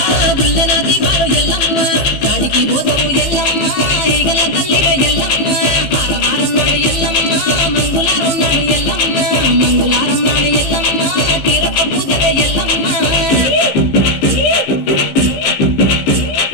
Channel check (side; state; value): right; late; 15 ms